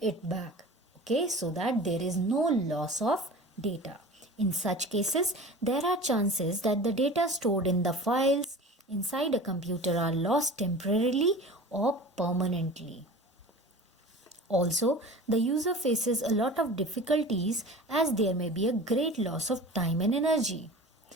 back. Okay, so that there is no loss of data. In such cases, there are chances that the data stored in the files inside a computer are lost temporarily or permanently. Also, the user faces a lot of difficulties as there may be a great loss of time and energy.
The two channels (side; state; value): both; normal; correlation 0.38